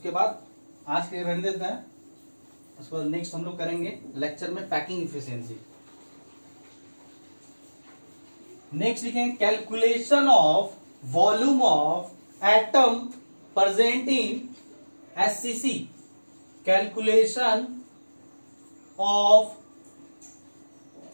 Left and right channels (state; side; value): inverted; both; correlation -1.00